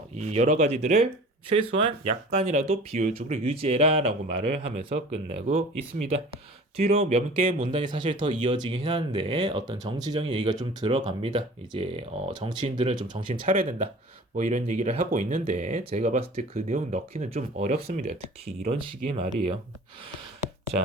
이 여러 가지들을 최소한 약간이라도 비효율적으로 유지해라 라고 말을 하면서 끝내고 있습니다. 뒤로 몇 개 문단이 사실 더 이어지긴 하는데 어떤 정치적인 얘기가 좀 들어갑니다. 이제 정치인들은 좀 정신 차려야 된다. 뭐 이런 얘기를 하고 있는데 제가 봤을 때 그 내용 넣기는 좀 어렵습니다. 특히 이런 식의 말이에요.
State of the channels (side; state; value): both; normal; correlation 0.43